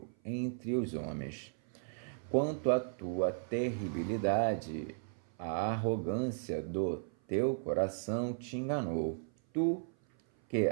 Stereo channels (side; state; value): left; silent; 54 dB below the other